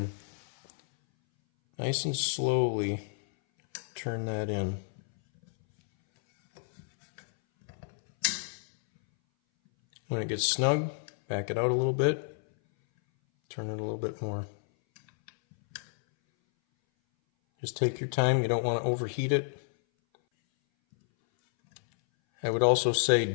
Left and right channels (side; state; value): right; silent; 58 dB below the other